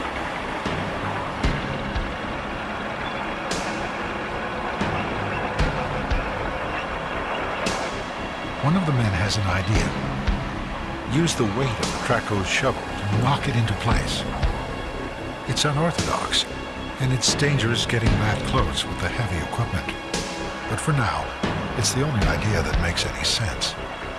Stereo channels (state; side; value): identical; both; correlation 1.00